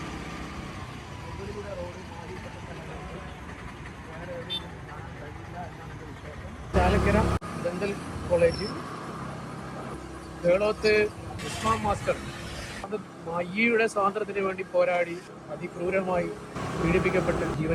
മുകളിലൂടെ റോഡ് മാറിപ്പെട്ട സ്ഥലങ്ങൾക്ക് വേറെ എവിടെയും കാണാൻ കഴിയില്ല എന്നാണ് എൻ്റെ വിശ്വാസം. Chalakkara dental college, Keloth Usman master, അത് മയ്യയുടെ സ്വാതന്ത്ര്യത്തിന് വേണ്ടി പോരാടി അതിക്രൂരമായി പീഡിപ്പിക്കപ്പെട്ട്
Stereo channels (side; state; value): both; identical; correlation 1.00